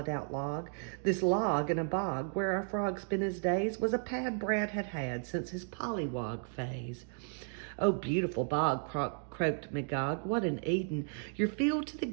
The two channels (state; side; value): silent; left; 55 dB below the other